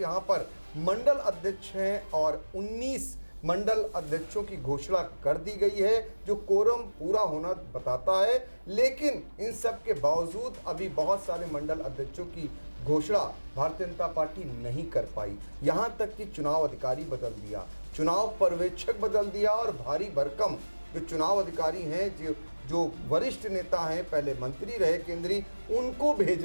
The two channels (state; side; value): inverted; both; correlation -1.00